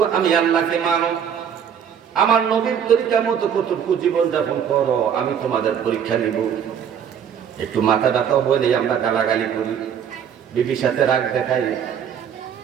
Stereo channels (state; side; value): quieter; left; 8.2 dB